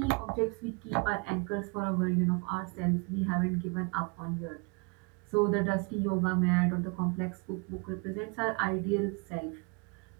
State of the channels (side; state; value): left; quieter; 32.1 dB